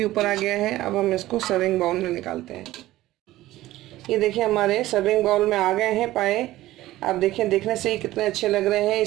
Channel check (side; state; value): left; quieter; 16.1 dB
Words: ऊपर आ गया है। अब हम इसको सर्विंग बाउल में निकालते हैं। ये देखिए हमारे सर्विंग बाउल में आ गए हैं पाए। आप देखें, देखने से ही कितने अच्छे लग रहे हैं।